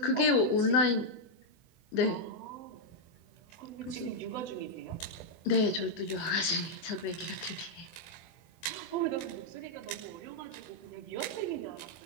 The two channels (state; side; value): late; right; 24 ms